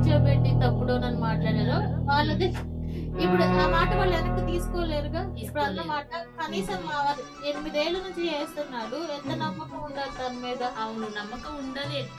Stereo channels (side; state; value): both; identical; correlation 1.00